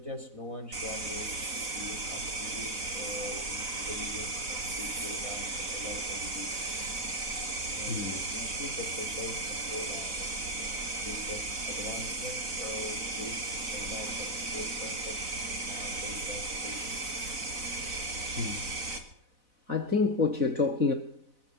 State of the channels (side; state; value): left; late; 4.0 ms